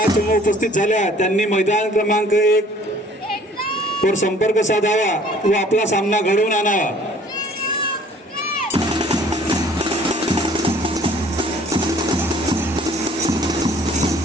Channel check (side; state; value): both; normal; correlation 0.54